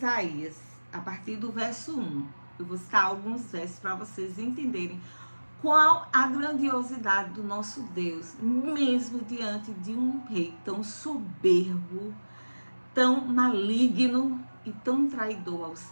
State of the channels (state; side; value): inverted; both; correlation -1.00